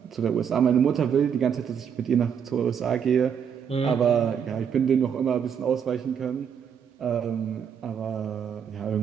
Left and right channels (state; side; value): quieter; left; 7.7 dB